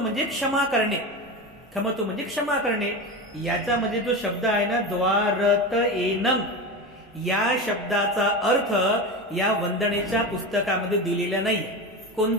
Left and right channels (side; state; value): both; normal; correlation 0.23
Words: क्षमा करणे, खमतु म्हणजे क्षमा करणे. याचा म्हणजे जो शब्द आहे ना द्वारत येनं, या शब्दाचा अर्थ या वंदनेच्या पुस्तकामध्ये दिलेला नाही,